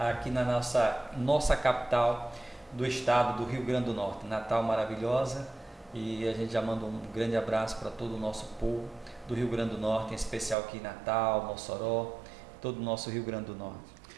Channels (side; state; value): left; drops out; at 10.6 s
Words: na nossa capital do estado do Rio Grande do Norte, Natal maravilhosa. E a gente já manda um grande abraço para todo o nosso povo do Rio Grande do Norte, em especial aqui em Natal, Mossoró, todo o nosso Rio Grande do Norte.